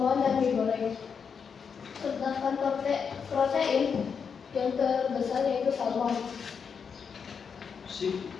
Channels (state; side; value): quieter; right; 6.4 dB